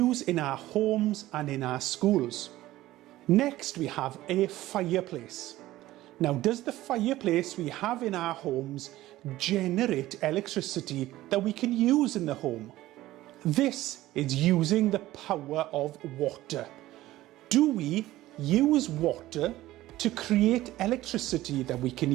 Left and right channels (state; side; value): quieter; left; 16.0 dB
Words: in our homes and in our schools? Next, we have a fireplace. Now, does the fireplace we have in our homes generate electricity that we can use in the home? This is using the power of water. Do we use water to create electricity that we can